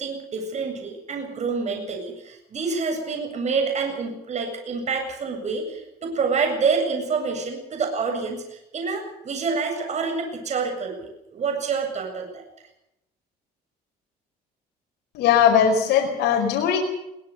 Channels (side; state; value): both; normal; correlation 0.15